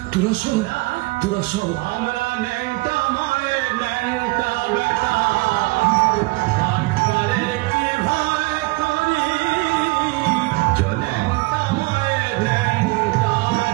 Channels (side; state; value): left; quieter; 23.7 dB